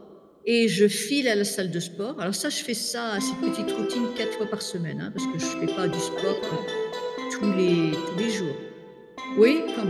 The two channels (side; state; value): both; identical; correlation 1.00